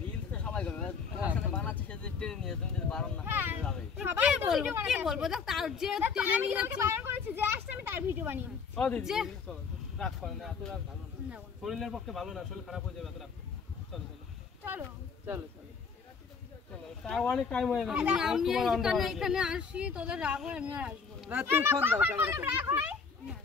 রিলস তো সবাই করে, তোমার সাথে বানাচ্ছে সে যে টেনে নিয়ে, তুমি যদি বারণ না করতে যাবে। সবাই কি বলবো? দেখ, তার যে টেনে নিয়ে যাচ্ছে, বারণ করেছে, যে আসছে আমি তার ভিডিও বানিয়ে দিচ্ছি। ও দিদি চলো, রাগ করো না, এত রাগ ভালো না, নেবো না। শরীরের পক্ষে ভালো না, শরীর খারাপ হয়ে যাবে এত রাগ। চলো চলো চলো চলো তাও অনেক টাইম হয়ে গেছে। আমি এখানে আসি, তোদের রাগ হয়, আমি আর আসবো না। না তুমি ফোন দাও ক্যামেরা করে।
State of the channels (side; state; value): right; quieter; 5.6 dB